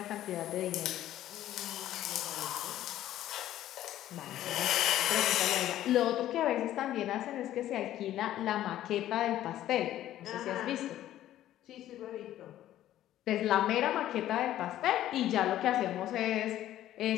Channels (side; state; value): right; quieter; 13.0 dB